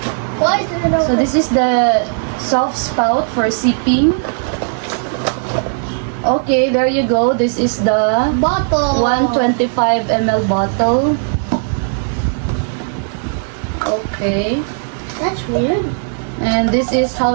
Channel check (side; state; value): left; silent; digital silence